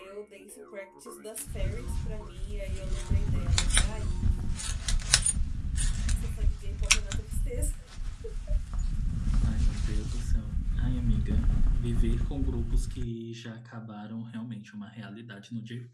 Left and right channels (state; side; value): identical; both; correlation 1.00